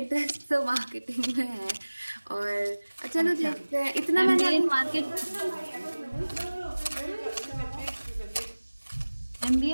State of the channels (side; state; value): both; inverted; correlation -1.00